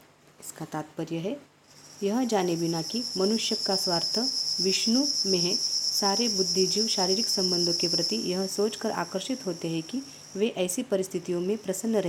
इसका तात्पर्य है, यह जाने बिना कि मनुष्य का स्वार्थ विष्णु में है, सारे बुद्धिजीव शारीरिक संबंधों के प्रति यह सोचकर आकर्षित होते हैं कि वे ऐसी परिस्थितियों में प्रसन्न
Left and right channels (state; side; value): identical; both; correlation 1.00